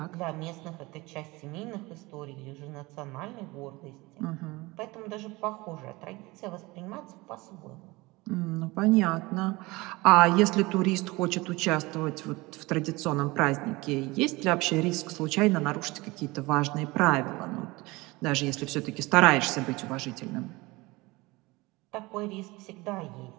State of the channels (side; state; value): left; quieter; 22.4 dB